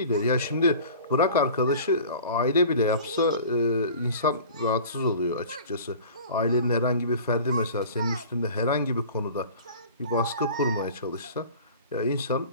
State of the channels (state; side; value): inverted; both; correlation -0.42